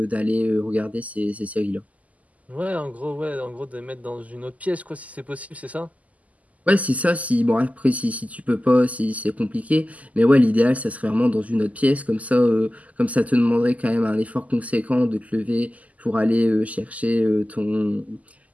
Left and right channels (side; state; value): left; late; 0.074 ms